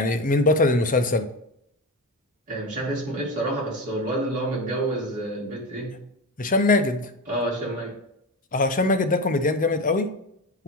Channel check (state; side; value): normal; both; correlation 0.22